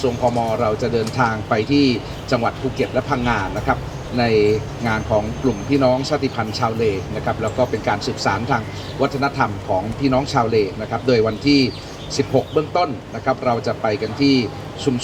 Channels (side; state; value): both; identical; correlation 1.00